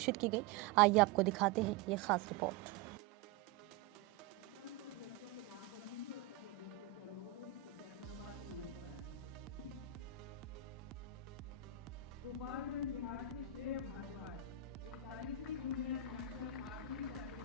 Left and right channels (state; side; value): quieter; left; 9.0 dB